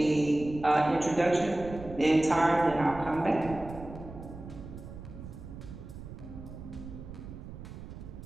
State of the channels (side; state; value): right; noise; rumble, 12 dB below the sound